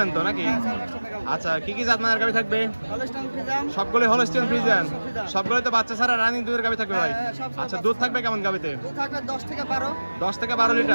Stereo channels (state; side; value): inverted; both; correlation -1.00